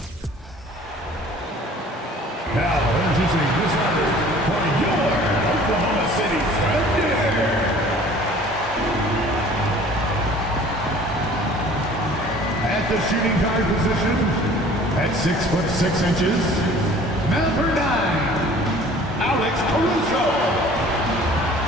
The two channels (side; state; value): both; normal; correlation 0.49